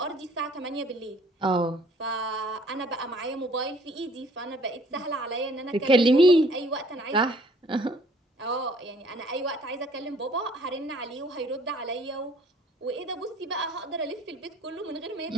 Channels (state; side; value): normal; both; correlation 0.58